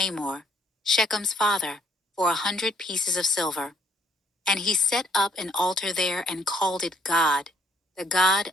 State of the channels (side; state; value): both; normal; correlation 0.67